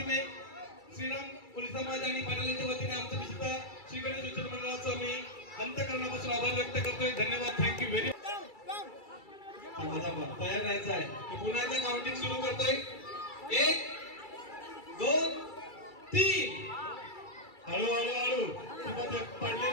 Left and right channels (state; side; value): late; right; 2.3 ms